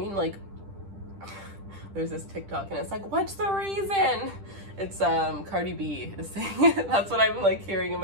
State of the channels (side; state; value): left; late; 10 ms